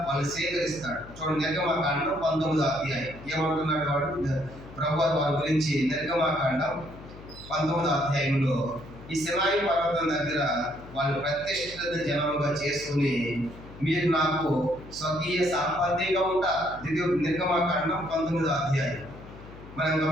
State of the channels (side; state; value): left; noise; hum, 17 dB below the sound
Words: వాళ్ళు స్వీకరిస్తాడు. చూడండి, నిర్గమాకాండం 19వ అధ్యాయం ఏమంటున్నాడు వాడు ప్రభువు వారి గురించి. నిర్గమాకాండం 19వ అధ్యాయంలో ఈ సినాయి పర్వతం దగ్గర వాళ్ళు ప్రతిష్ఠిత జనముగా చేసుకుని మీరు నాకు స్వకీయ సంపత్తిగా ఉంటారు. నిర్గమాకాండం 19వ అధ్యాయం మనం